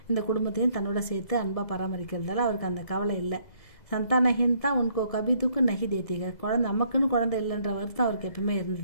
இந்த குடும்பத்தையும் தன்னோட சேர்த்து அன்பாக பராமரிக்கிறதால அவருக்கு அந்த கவலை இல்லை. சந்தானஹீன் தான் உன்கோ கபி துக்கு நகி தேத்திக. குழந்தை நமக்குன்னு குழந்தை இல்லைன்ற வருத்தம் அவருக்கு எப்பவுமே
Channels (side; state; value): right; late; 2.0 ms